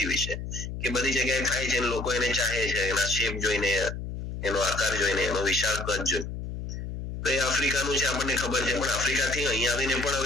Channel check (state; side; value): noise; left; hum, 7 dB below the sound